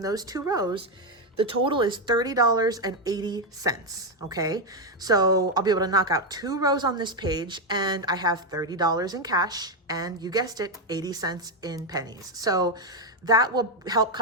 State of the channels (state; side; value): normal; both; correlation 0.05